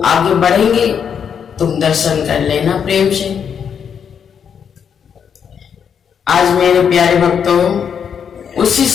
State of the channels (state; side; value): quieter; right; 7.5 dB